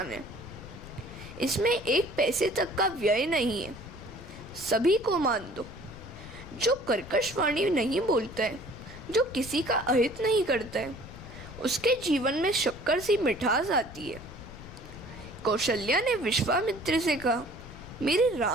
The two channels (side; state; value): left; noise; rumble, 15 dB below the sound